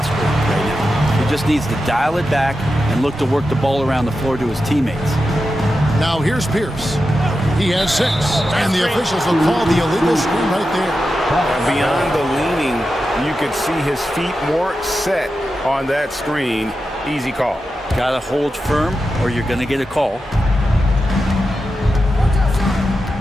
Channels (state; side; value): normal; both; correlation 0.90